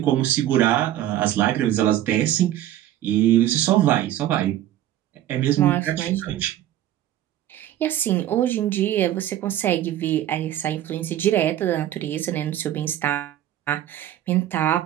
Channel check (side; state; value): left; quieter; 12.6 dB